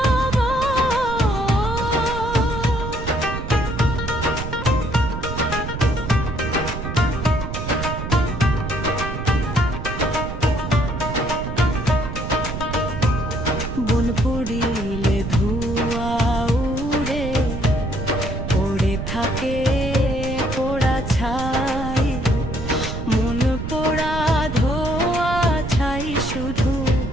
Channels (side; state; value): right; noise; rumble, 6 dB below the sound